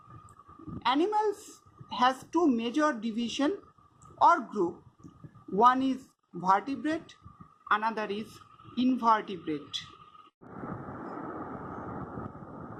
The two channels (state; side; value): identical; both; correlation 1.00